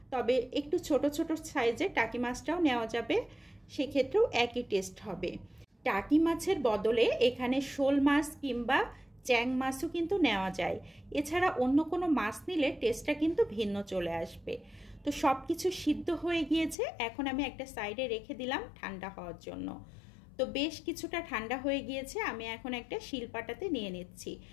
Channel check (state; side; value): drops out; right; at 16.8 s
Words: তবে একটু ছোট ছোট সাইজের টাকি মাছটাও নেওয়া যাবে, সেক্ষেত্রেও একই টেস্ট হবে। টাকি মাছের বদলে এখানে শোল মাছ কিংবা চ্যাং মাছও কিন্তু নেওয়া যায়। এছাড়া অন্য কোনো মাছ নিলে টেস্টটা কিন্তু ভিন্ন চলে আসবে। তো সব কিছু সিদ্ধ হয়ে গিয়েছে, এখন আমি একটা সাইডে রেখে দিলাম ঠান্ডা হওয়ার জন্য। তো বেশ কিছুটা ঠান্ডা হয়ে গিয়েছে, আমি এখন একটা শিলপাটাতে নিয়ে নিচ্ছি।